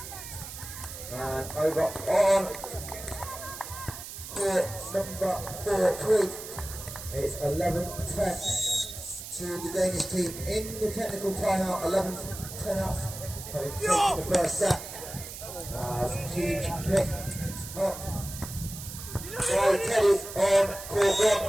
Over on court number 4-3. It's 11-10 to the Danish team in the technical timeout. 11-10 up, having taken the first set. Huge pick up by Teddy on court 1,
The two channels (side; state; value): right; noise; hiss, 11 dB below the sound